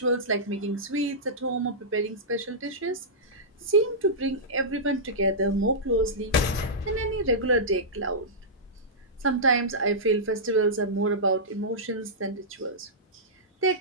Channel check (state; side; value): normal; both; correlation -0.14